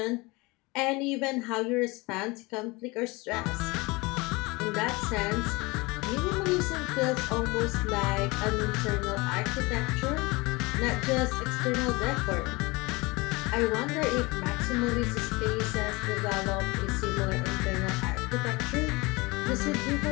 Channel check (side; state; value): right; quieter; 24.3 dB